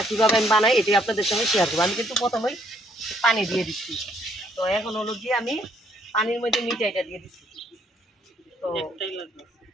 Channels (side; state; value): both; normal; correlation 0.68